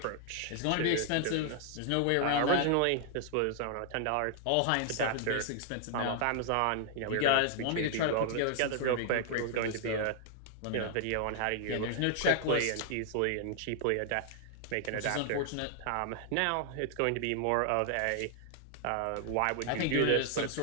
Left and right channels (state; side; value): different; both; correlation 0.00